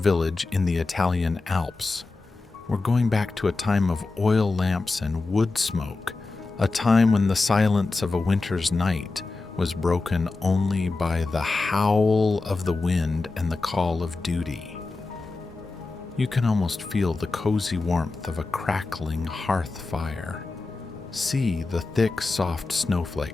in the Italian Alps. We're going back to a time of oil lamps and wood smoke, a time when the silence of a winter's night was broken only by the howl of the wind and the call of duty. You can almost feel the cozy warmth of a crackling hearth fire. See the thick, soft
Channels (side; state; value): right; quieter; 3.6 dB